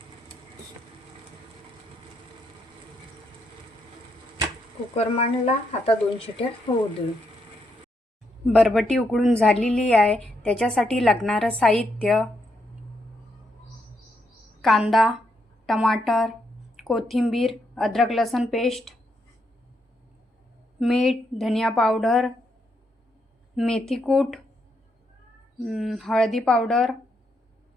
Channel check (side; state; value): both; normal; correlation 0.78